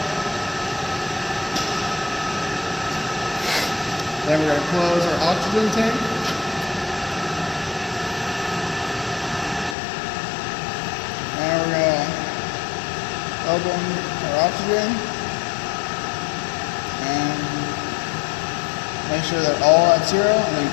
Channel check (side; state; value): right; drops out; at 9.8 s